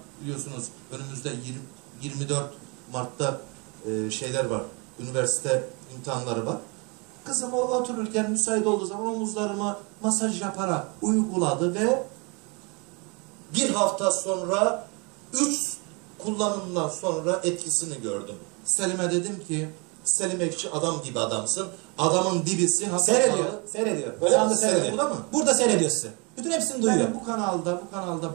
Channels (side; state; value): left; quieter; 31.0 dB